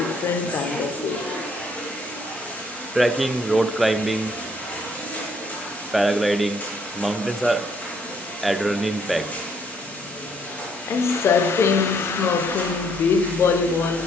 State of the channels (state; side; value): normal; both; correlation 0.68